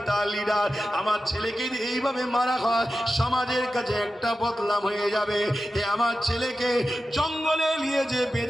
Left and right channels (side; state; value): both; normal; correlation 0.92